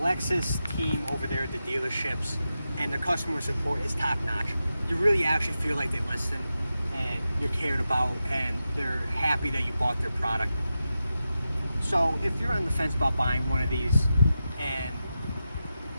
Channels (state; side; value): inverted; both; correlation -0.91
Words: team over there at the dealerships and the customer support is top notch. You really actually feel like they listen and you're cared about and they're happy that you bought their product. So if you're on the fence about buying one of these and